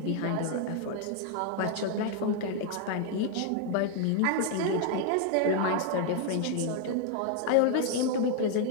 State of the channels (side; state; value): both; different; correlation 0.00